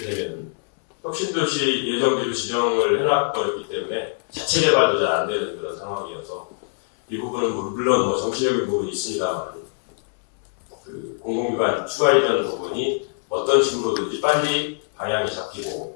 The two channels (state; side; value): silent; right; digital silence